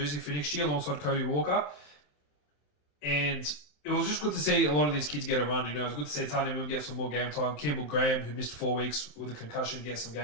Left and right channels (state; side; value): late; right; 27 ms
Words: for next year alongside Cody Walker. And it was just good to see a lot of these kids get a run. It was good to see Tanya Moon get some more game time. Campbell Graham, who missed 4 weeks with a concussion, get some